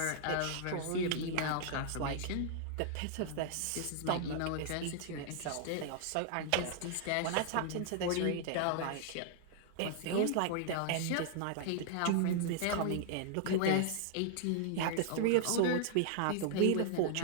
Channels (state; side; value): different; both; correlation -0.01